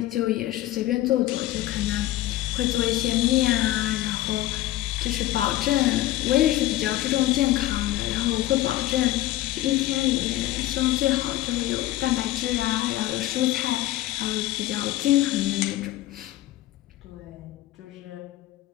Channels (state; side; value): quieter; right; 15.5 dB